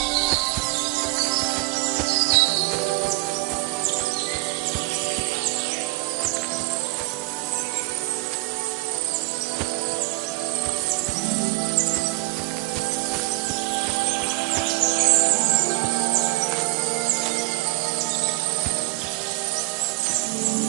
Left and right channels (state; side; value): quieter; left; 23.6 dB